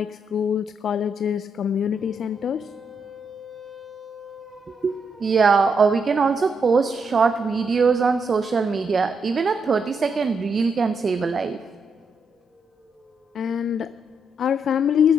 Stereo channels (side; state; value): both; normal; correlation 0.79